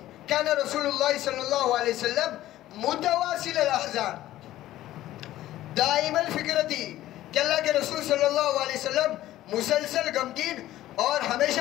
کان رسول اللہ صلی اللہ علیہ وسلم متواصل الاحزان دائم الفکرتی، کہ اللہ کے رسول صلی اللہ علیہ وسلم مسلسل غمگین اور ہمیشہ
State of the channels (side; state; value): right; quieter; 14.5 dB